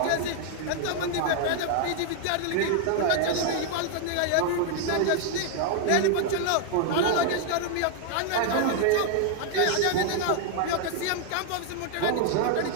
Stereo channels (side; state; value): both; different; correlation 0.00